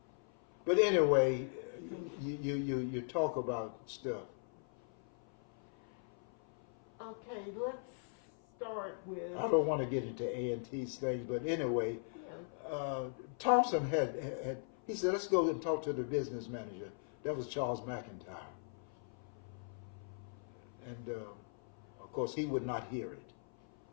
But anyway, you talk about stuff. Okay, let's start with. I don't want to get into A&T's things, but anyway, Yeah. Thompson had he said, let's go and talk to the business manager. That was Charles McIntyre. And of course, he would not hear it.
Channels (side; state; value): right; silent; 51 dB below the other